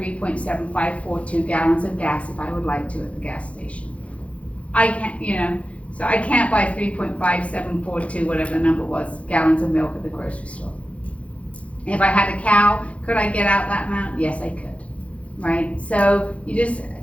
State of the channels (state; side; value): late; right; 0.063 ms